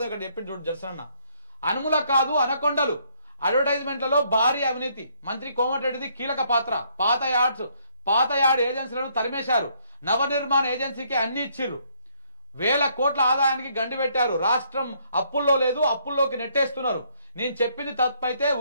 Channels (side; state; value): both; inverted; correlation -0.69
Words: ఇక్కడ చెప్పింది చూడు జర్సనన్న. అనుముల కాదు అనకొండలు అడ్వర్టైజ్మెంట్లలో భారీ అవినీతి, మంత్రి కోమటిరెడ్డిది కీలక పాత్ర, పాత యార్డ్ ఏజెన్సీలను తరిమేశారు, నవనిర్మాణ ఏజెన్సీకి అన్ని ఇచ్చిర్రు, వేల కోట్ల ఆదాయానికి గండి పెట్టారు, రాష్ట్రం అప్పుల్లో లేదు, అప్పుల్లోకి నెట్టేస్తున్నారు, నేను చెప్పింది తప్పైతే